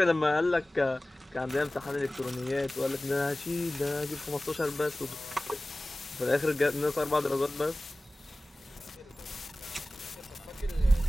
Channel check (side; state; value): both; normal; correlation 0.97